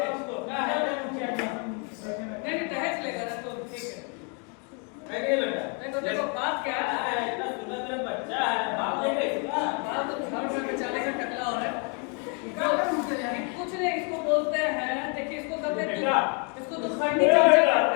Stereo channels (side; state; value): right; quieter; 37.1 dB